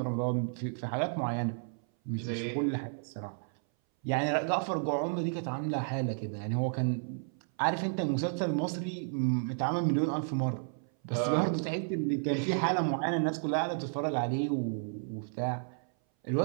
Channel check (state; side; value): silent; left; 56 dB below the other